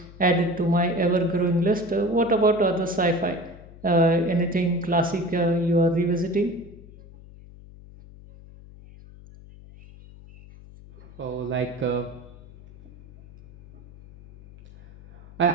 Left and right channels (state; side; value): noise; left; hum, 20 dB below the sound